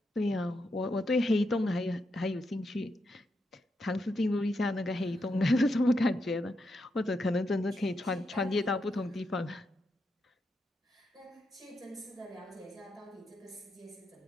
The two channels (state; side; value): normal; both; correlation 0.83